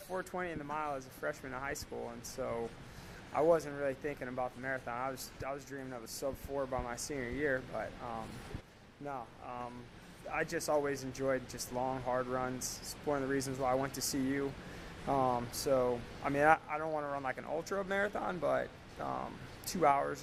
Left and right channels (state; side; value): identical; both; correlation 1.00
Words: in the mile as a freshman in high school, and so I wasn't really thinking about the marathon. I was dreaming of a sub-4 by my senior year, but I just always enjoyed just long, hard runs. It's one of the reasons why I went to CU. I don't want to run like an ultra marathon, but 2